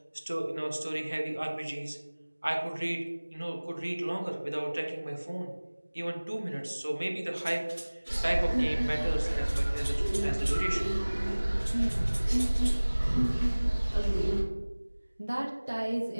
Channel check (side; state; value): both; inverted; correlation -1.00